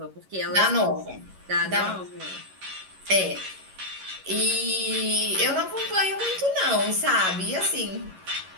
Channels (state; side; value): late; left; 11 ms